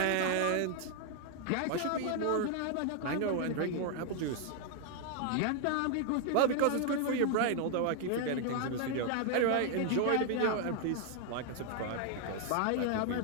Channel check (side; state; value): both; different; correlation 0.00